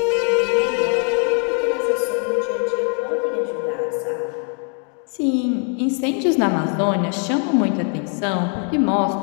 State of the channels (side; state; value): right; quieter; 37.2 dB